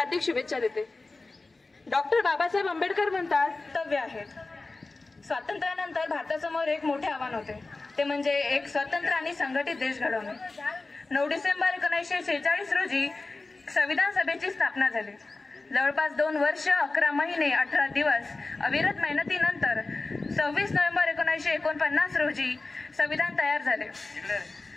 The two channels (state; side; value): quieter; right; 3.4 dB